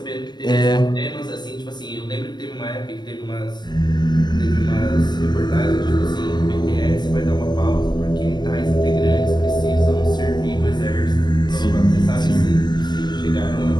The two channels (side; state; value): right; late; 0.21 ms